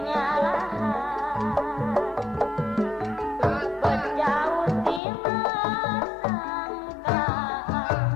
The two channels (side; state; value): right; drops out; at 5.0 s